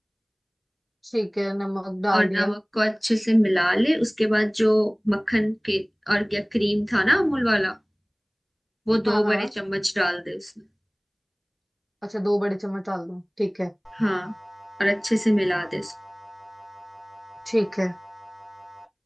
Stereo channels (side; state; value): both; identical; correlation 1.00